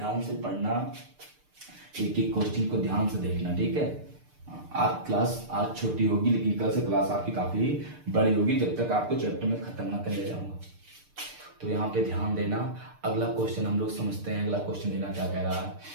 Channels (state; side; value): late; left; 6.7 ms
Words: से पढ़ना, एक एक क्वेश्चन को ध्यान से देखना, ठीक है। आप क्लास आज छोटी होगी, लेकिन कल से क्लास आपकी काफी बड़ी होगी, जब तक आपको चैप्टर में खत्म ना कर ले जाऊंगा। तो यहाँ पे ध्यान देना। अगला क्वेश्चन हम लोग समझते हैं। अगला क्वेश्चन देना क्या कह रहा है,